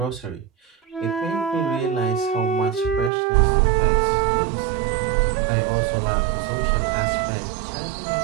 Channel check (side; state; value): left; drops out; at 3.1 s